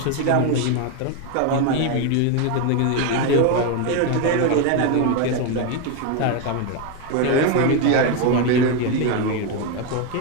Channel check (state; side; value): different; both; correlation 0.02